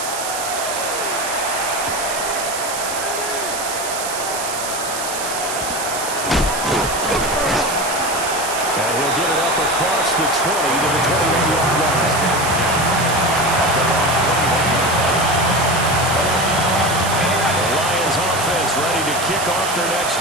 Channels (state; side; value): noise; right; hiss, 6 dB below the sound